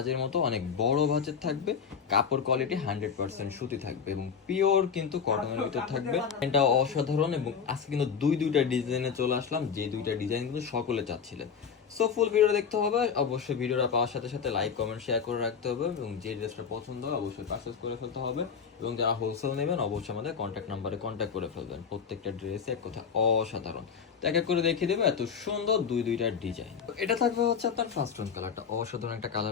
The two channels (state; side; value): quieter; right; 6.6 dB